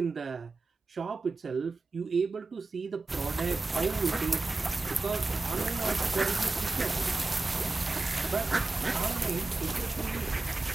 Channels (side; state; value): left; quieter; 3.5 dB